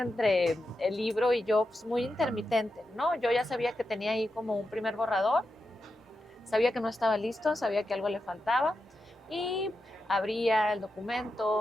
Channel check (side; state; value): both; normal; correlation 0.88